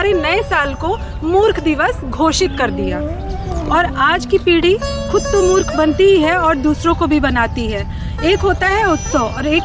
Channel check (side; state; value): both; identical; correlation 1.00